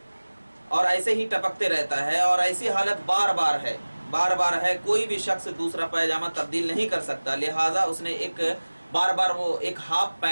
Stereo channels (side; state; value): both; inverted; correlation -1.00